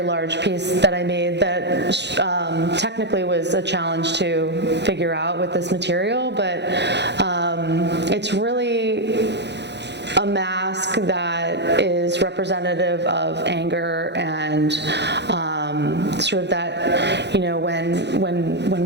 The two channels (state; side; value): late; left; 0.50 ms